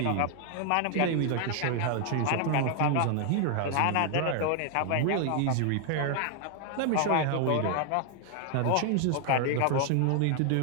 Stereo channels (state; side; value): different; both; correlation 0.00